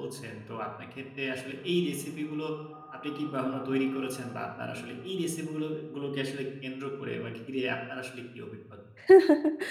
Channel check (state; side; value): identical; both; correlation 1.00